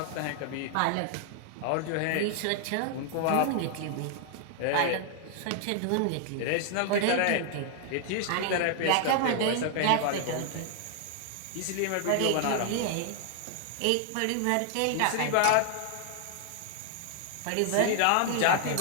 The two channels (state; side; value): different; both; correlation 0.00